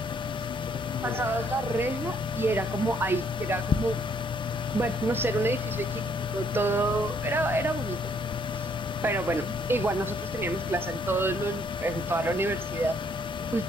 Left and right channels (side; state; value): both; normal; correlation 0.67